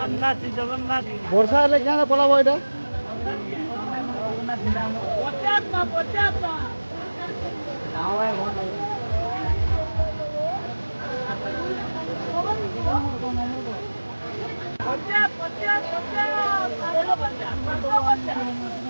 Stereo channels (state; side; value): inverted; both; correlation -1.00